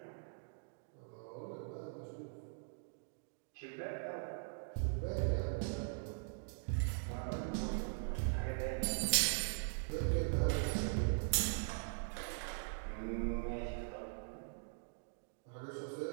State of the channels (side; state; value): left; silent; digital silence